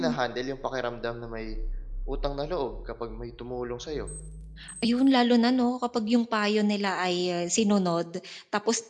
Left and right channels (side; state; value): both; identical; correlation 1.00